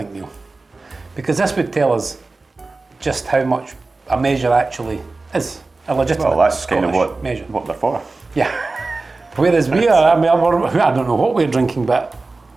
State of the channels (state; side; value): quieter; left; 3.5 dB